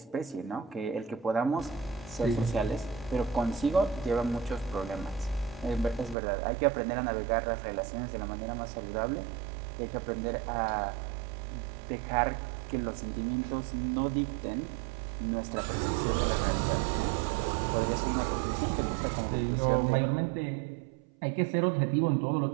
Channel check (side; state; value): left; drops out; at 6.2 s